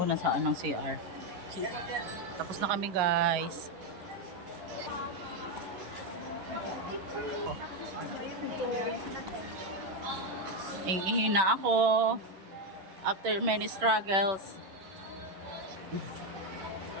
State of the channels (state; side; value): late; left; 11 ms